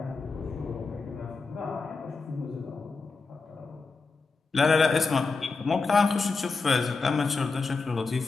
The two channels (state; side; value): quieter; right; 4.2 dB